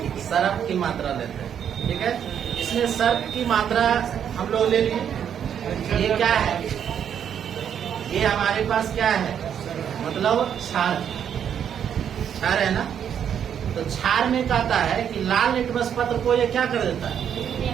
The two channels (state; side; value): quieter; left; 8.7 dB